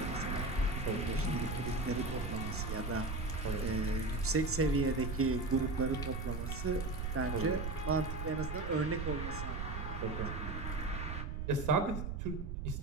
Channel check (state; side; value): noise; right; rumble, 4 dB below the sound